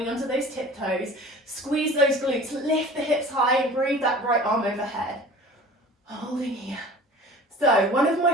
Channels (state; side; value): normal; both; correlation 0.43